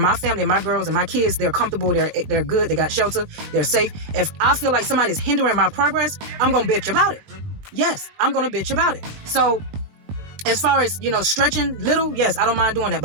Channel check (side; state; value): left; late; 20 ms